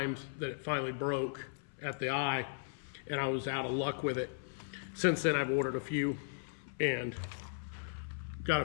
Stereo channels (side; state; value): right; silent; 53 dB below the other